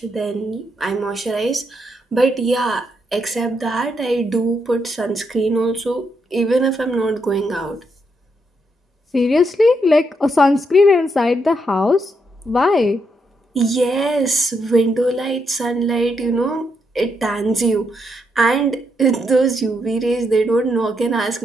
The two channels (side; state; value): both; normal; correlation 0.79